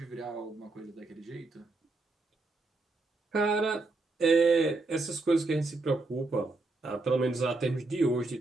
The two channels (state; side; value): quieter; left; 3.3 dB